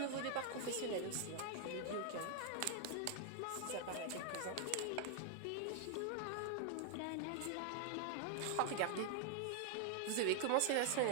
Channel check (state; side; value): different; both; correlation 0.00